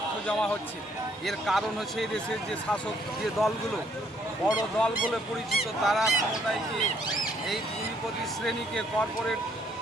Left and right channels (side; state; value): both; normal; correlation 0.67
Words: জমা হচ্ছে। এর কারণ হচ্ছে এই দেশের যে শাসক যে দলগুলো বড় দল বলে পরিচিত, তারা ক্ষমতায় গিয়ে এই পুঁজিপতি শ্রেণীকে কর্পোরেট